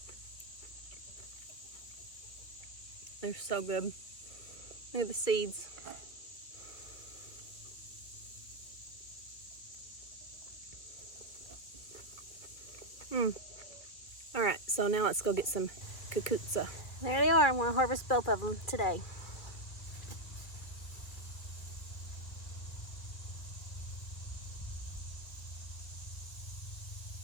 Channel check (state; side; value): late; right; 2.5 ms